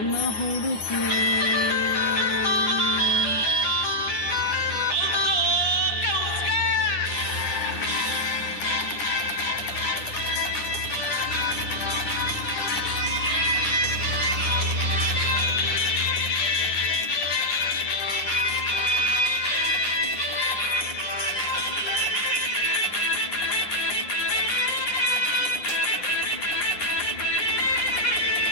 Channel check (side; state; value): right; late; 9.7 ms